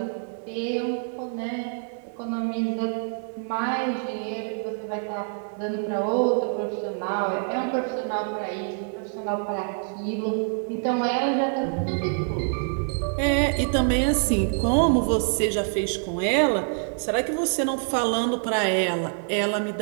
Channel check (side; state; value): left; silent; 61 dB below the other